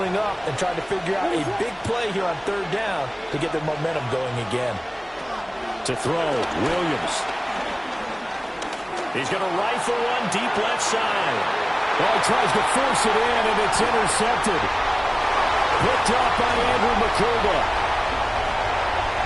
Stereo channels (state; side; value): identical; both; correlation 1.00